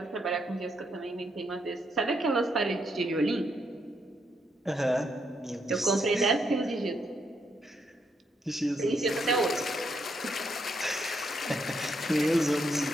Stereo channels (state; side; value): normal; both; correlation 0.77